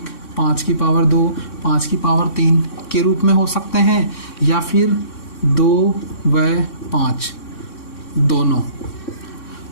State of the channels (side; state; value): right; late; 3.6 ms